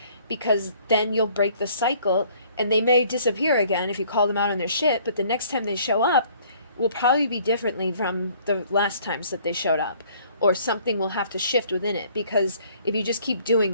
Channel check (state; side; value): inverted; both; correlation -0.58